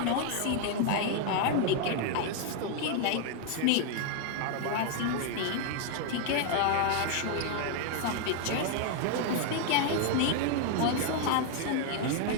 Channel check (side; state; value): both; different; correlation 0.00